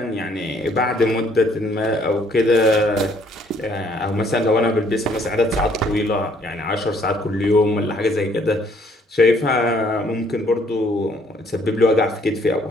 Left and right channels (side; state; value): both; normal; correlation 0.64